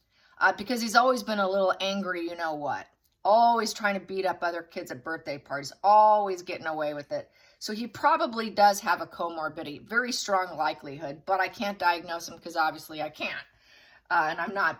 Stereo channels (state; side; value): identical; both; correlation 1.00